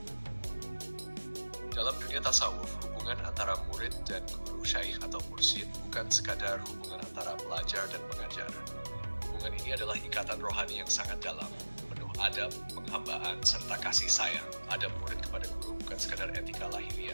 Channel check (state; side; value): inverted; both; correlation -1.00